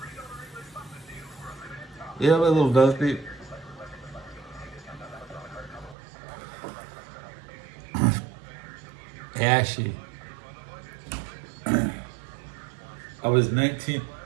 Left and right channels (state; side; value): drops out; left; at 6.0 s